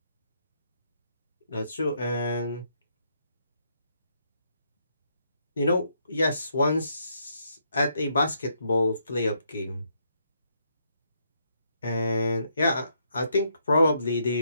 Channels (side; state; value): both; inverted; correlation -0.75